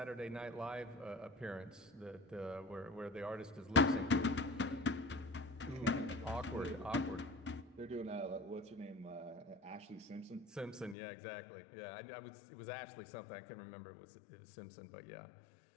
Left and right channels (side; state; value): right; drops out; at 11.0 s